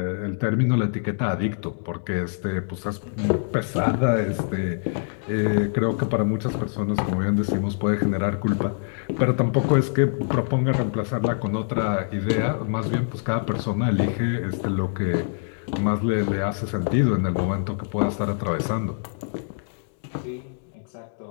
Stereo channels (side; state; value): right; silent; digital silence